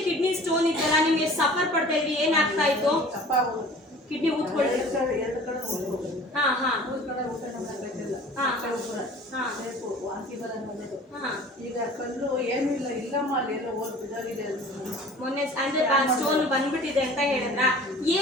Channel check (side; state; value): both; normal; correlation 0.45